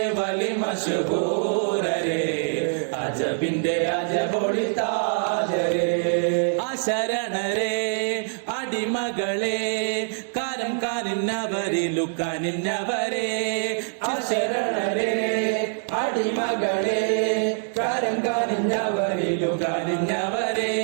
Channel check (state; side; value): silent; left; digital silence